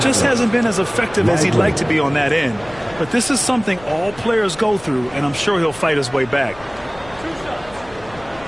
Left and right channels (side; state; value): left; noise; rumble, 22 dB below the sound